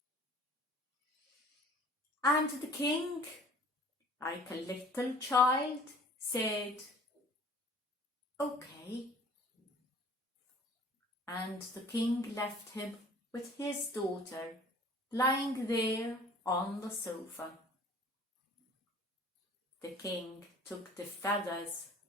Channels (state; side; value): normal; both; correlation 0.50